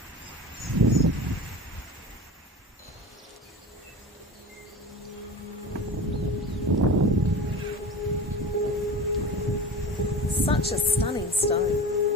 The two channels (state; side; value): normal; both; correlation 0.33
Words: Such a stunning stone.